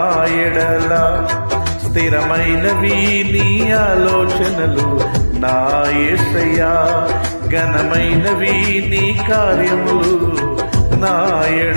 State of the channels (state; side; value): inverted; both; correlation -1.00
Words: ఎడల, స్థిరమైనవి నీ ఆలోచనలు నా యేసయ్యా. ఘనమైనవి నీ కార్యములు నా